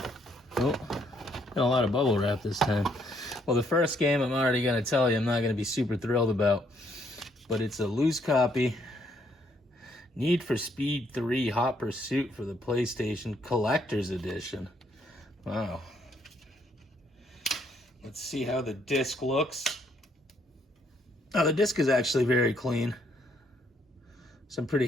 Oh, got a lot of bubble wrap this time. Well, the first game I'm already going to tell you I'm not going to be super thrilled about, but it's a loose copy. Need for Speed 3 Hot Pursuit for the PlayStation Collector's Edition. Wow. Let's see how the disc looks. Oh, the disc is actually very clean, so I'm pretty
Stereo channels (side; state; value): both; normal; correlation 0.70